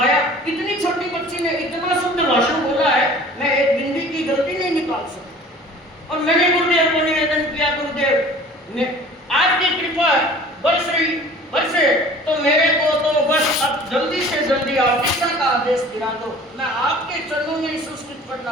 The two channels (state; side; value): normal; both; correlation 0.46